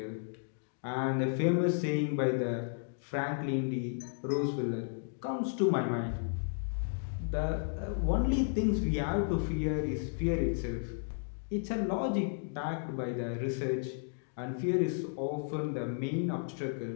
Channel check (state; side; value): silent; right; digital silence